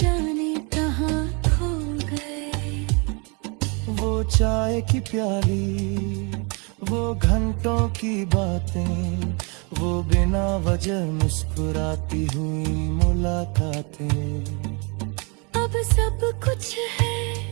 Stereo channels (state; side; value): quieter; left; 32.4 dB